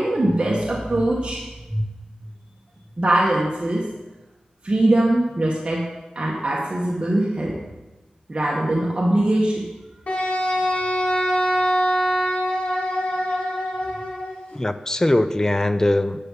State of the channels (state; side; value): normal; both; correlation 0.95